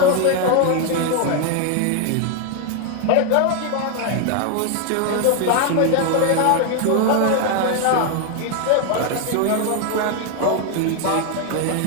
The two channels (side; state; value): both; different; correlation 0.01